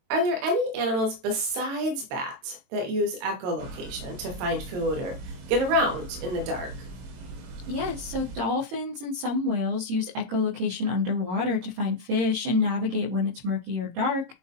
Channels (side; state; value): left; late; 22 ms